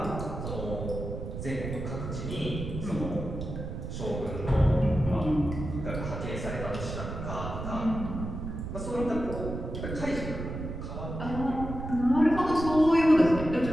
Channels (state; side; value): noise; right; rumble, 6 dB below the sound